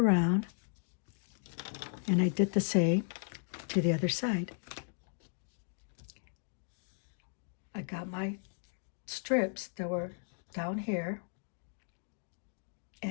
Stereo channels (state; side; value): silent; right; digital silence